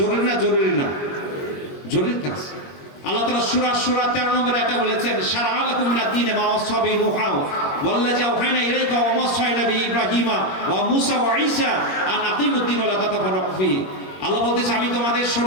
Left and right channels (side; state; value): right; late; 22 ms